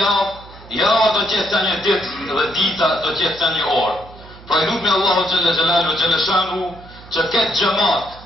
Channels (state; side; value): noise; right; hum, 20 dB below the sound